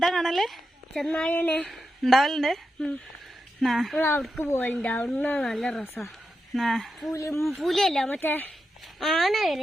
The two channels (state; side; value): normal; both; correlation 0.88